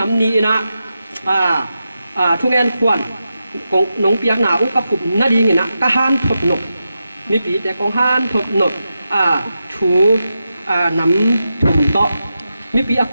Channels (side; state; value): both; inverted; correlation -0.89